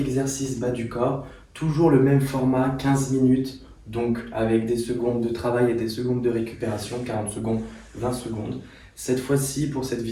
bas du corps, toujours le même format, 15 minutes, donc avec des secondes de travail et des secondes de récupération, 40 secondes, 20 secondes. Cette fois-ci, pour cette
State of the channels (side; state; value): both; identical; correlation 1.00